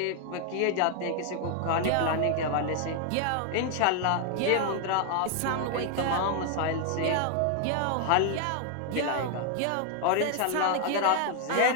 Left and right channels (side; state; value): both; different; correlation 0.00